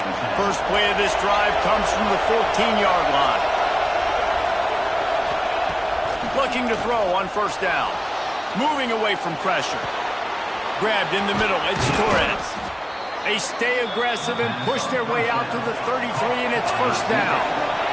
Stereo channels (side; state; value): both; identical; correlation 1.00